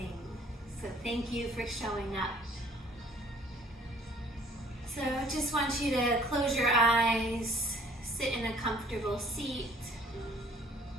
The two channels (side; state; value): both; normal; correlation 0.56